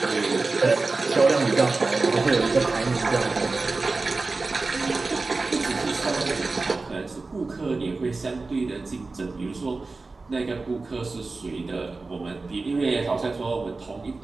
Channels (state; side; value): quieter; left; 3.7 dB